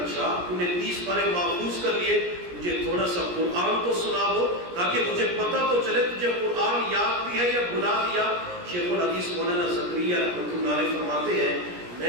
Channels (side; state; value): left; late; 17 ms